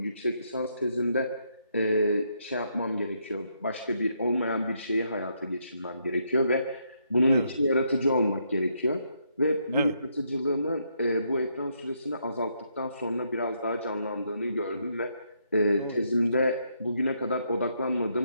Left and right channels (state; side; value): inverted; both; correlation -0.76